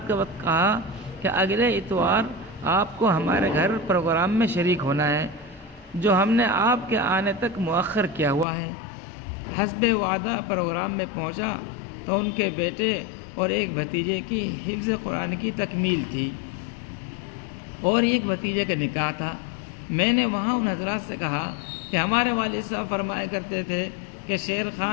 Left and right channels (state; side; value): drops out; right; at 8.5 s